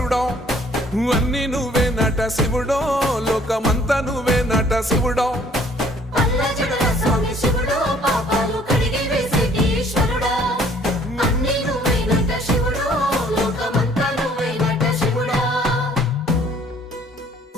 అన్ని నువ్వే నట శివుడో లోకమంతా నువ్వే నట శివుడో పల్ల జడల స్వామి శివుడో పాపాలు కడిగి వేసేటి ఈశ్వరుడో అన్ని నువ్వే నట శివుడో లోకమంతా నువ్వే నట శివుడో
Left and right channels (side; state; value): both; normal; correlation 0.59